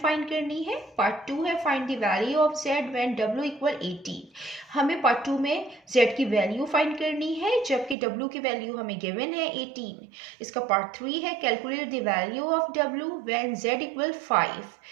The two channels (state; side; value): drops out; left; at 8.0 s